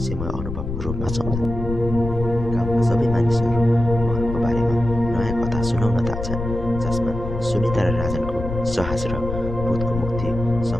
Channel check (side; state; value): left; noise; rumble, 6 dB below the sound